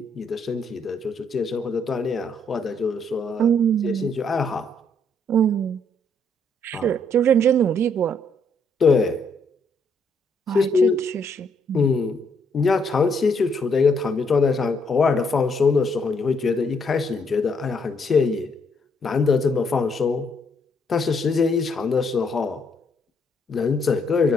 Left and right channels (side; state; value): both; normal; correlation 0.71